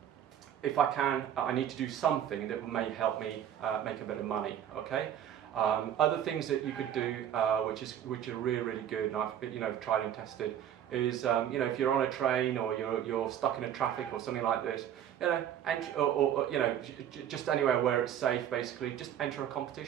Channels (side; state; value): left; quieter; 10.1 dB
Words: if I can, I need to do something that may help me make a bit of money. Okay. Other things that you could do, which are really good, and I've tried and tested, is if you're on a train or you're stuck in a traffic or something like this, just anywhere where it's safe, basically, just enter a